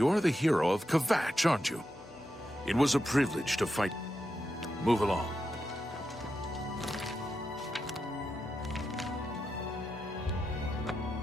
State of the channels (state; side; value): normal; both; correlation 0.87